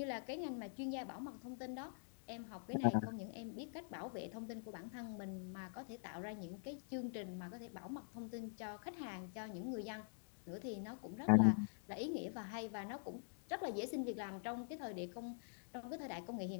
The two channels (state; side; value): silent; right; digital silence